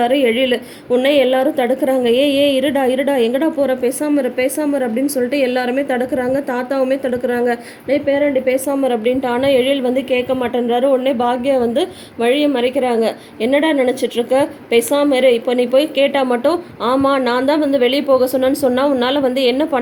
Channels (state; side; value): identical; both; correlation 1.00